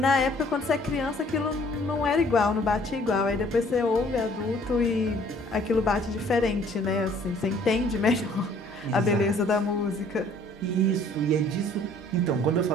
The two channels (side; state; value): both; normal; correlation 0.57